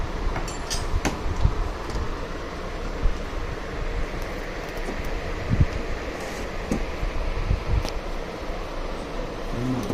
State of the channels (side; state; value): both; identical; correlation 1.00